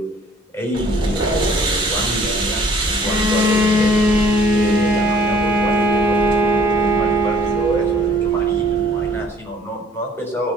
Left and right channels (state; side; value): normal; both; correlation 0.56